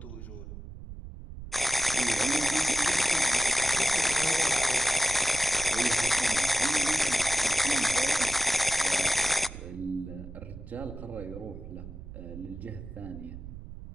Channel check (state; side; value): noise; right; rumble, 13 dB below the sound